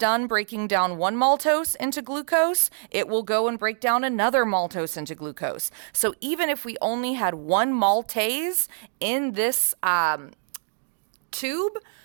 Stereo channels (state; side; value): silent; left; digital silence